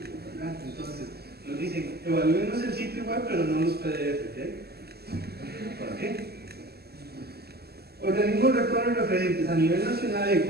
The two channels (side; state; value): left; late; 0.46 ms